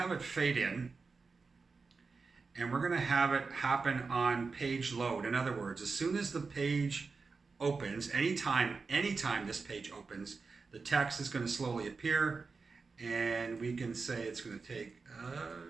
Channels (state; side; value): quieter; left; 4.5 dB